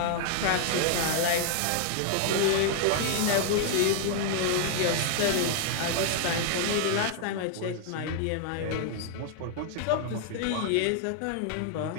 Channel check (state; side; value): different; both; correlation 0.00